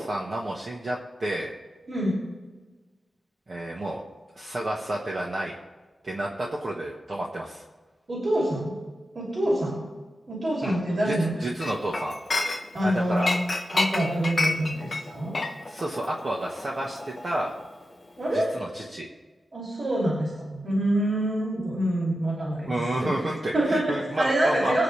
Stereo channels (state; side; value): normal; both; correlation 0.90